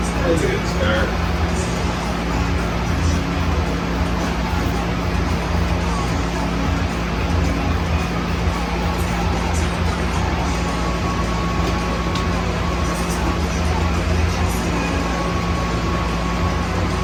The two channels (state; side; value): identical; both; correlation 1.00